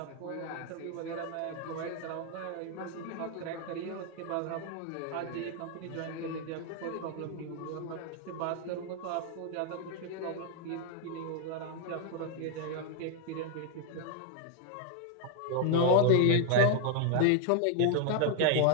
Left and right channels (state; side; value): different; both; correlation 0.00